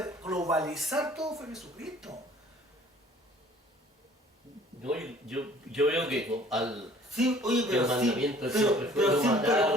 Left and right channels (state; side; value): normal; both; correlation 0.53